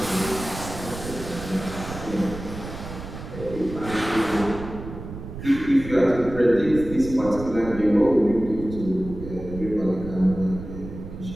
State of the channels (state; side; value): noise; right; rumble, 11 dB below the sound